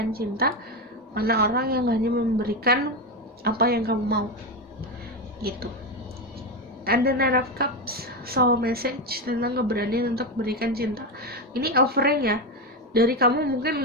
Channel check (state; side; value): normal; both; correlation 0.13